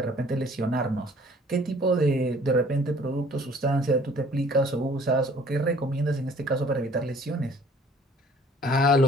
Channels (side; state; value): both; normal; correlation 0.55